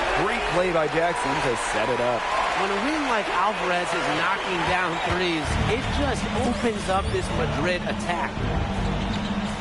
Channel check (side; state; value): both; identical; correlation 1.00